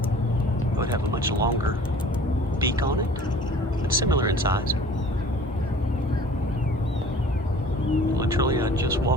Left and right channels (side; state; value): both; normal; correlation 0.48